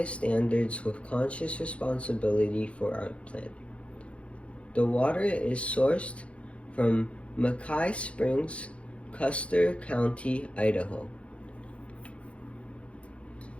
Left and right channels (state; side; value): late; right; 0.061 ms